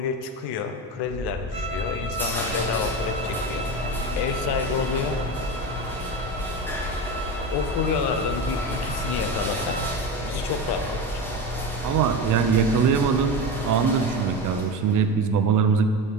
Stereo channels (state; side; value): normal; both; correlation 0.22